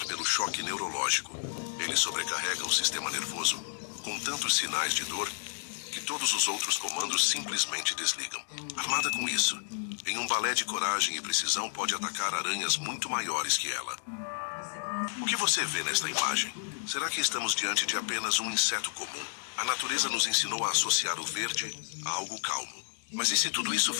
pelo choque neurológico. Ele sobrecarrega o sistema nervoso com tantos sinais de dor que todos os outros comandos simplesmente desligam. Armada com isso, em um balé de coragem e precisão, pode atacar aranhas muito maiores que ela. O que você vê nesta imagem? Será que estamos diante de apenas um inseto comum? A natureza nos ensinou a associar o verde a algo calmo. Mas e se tudo isso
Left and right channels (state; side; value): silent; right; digital silence